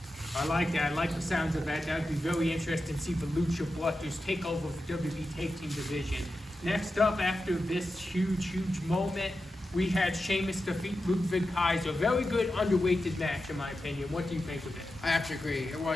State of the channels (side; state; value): both; normal; correlation 0.91